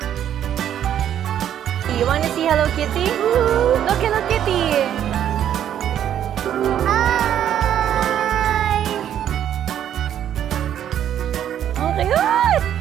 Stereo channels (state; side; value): quieter; left; 10.2 dB